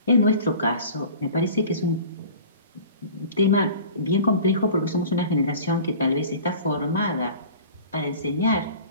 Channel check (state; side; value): inverted; both; correlation -0.43